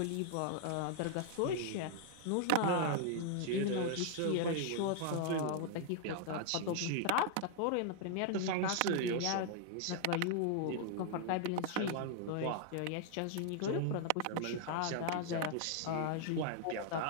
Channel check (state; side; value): different; both; correlation 0.00